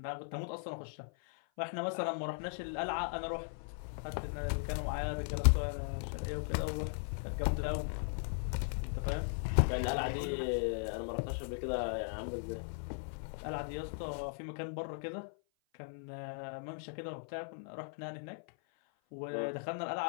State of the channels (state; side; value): silent; right; 52 dB below the other